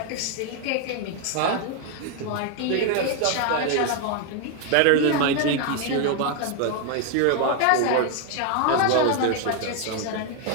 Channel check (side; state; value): both; different; correlation 0.01